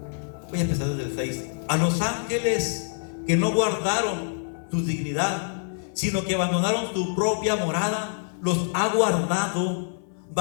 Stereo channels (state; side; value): silent; right; 57 dB below the other